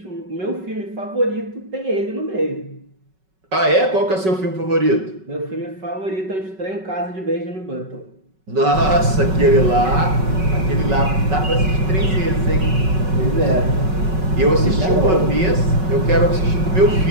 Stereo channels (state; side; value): late; left; 5.3 ms